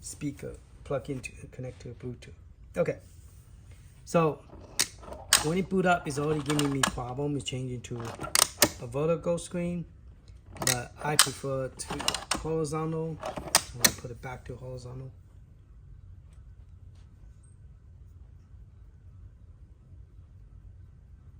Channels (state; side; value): identical; both; correlation 1.00